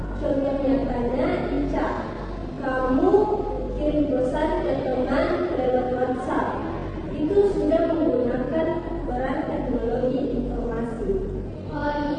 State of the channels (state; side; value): identical; both; correlation 1.00